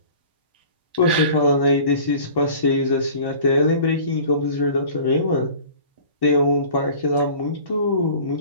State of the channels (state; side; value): inverted; both; correlation -0.45